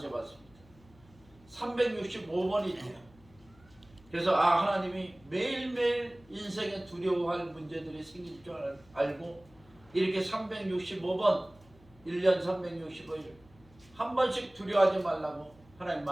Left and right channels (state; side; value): noise; left; hum, 26 dB below the sound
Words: 365번이 있대요. 그래서 하나님이 매일매일 인생에 두려워할 문제들이 생길 줄 알고 이렇게 365번 1년 365일 한 번씩 두려워하지 말라고 하나님